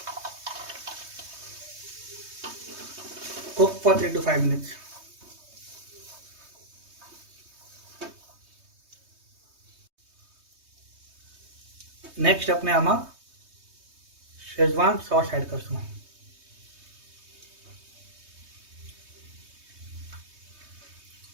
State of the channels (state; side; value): late; left; 3.2 ms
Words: cook for 3 to 5 minutes. Next अपने आमा शेजवान सॉस ऐड करशुं.